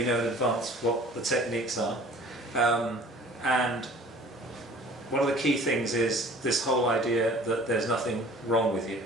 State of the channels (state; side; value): normal; both; correlation 0.48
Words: know in advance what the techniques are. And one of the key things is this whole idea that there's nothing wrong with you.